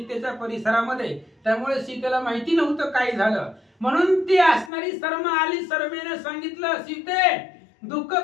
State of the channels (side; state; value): right; drops out; at 4.7 s